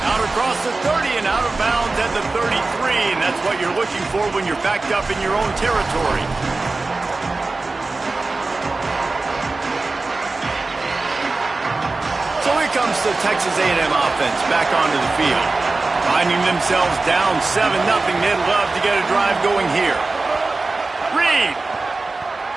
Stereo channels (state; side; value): quieter; left; 3.5 dB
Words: Out across the 30 and out of bounds at the 33, and that's what you're looking for when you're backed up in your own territory. So here comes the Texas A&M offense back onto the field. Finding themselves down 7-0, they'd love to get a drive going here. Reed.